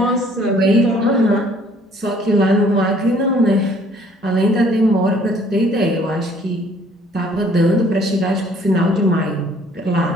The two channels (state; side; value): normal; both; correlation 0.59